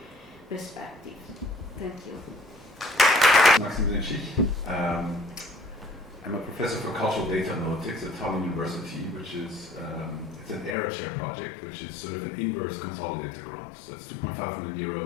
perspectives. Thank you. Maxim Zenchich. I'm a professor for cultural data analytics at Tallinn University, which is it's an ERA chair project, which is sort of an inverse consolidator grant. So it's 2.5 million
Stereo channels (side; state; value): right; drops out; at 10.8 s